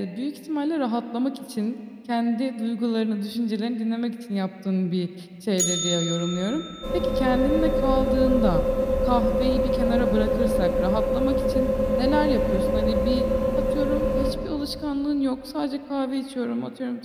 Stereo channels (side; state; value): both; identical; correlation 1.00